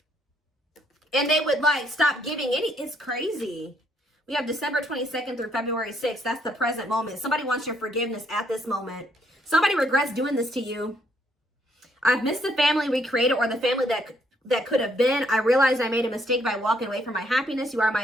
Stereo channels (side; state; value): both; normal; correlation 0.70